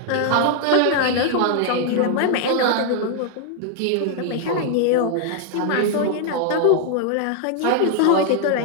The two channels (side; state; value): both; different; correlation 0.00